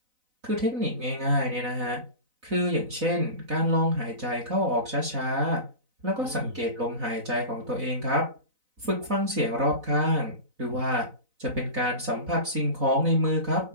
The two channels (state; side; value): late; left; 4.0 ms